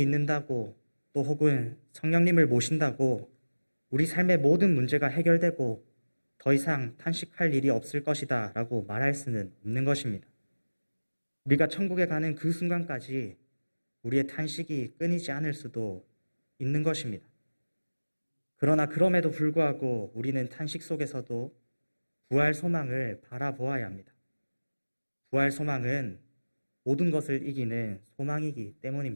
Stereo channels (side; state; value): both; inverted; correlation -1.00